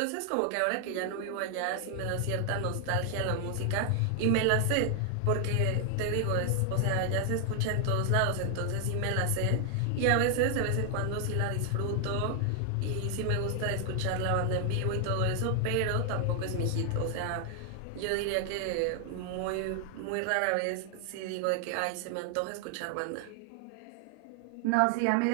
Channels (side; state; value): both; different; correlation 0.00